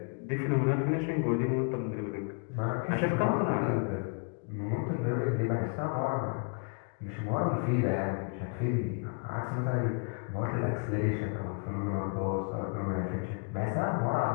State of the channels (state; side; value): quieter; right; 39.5 dB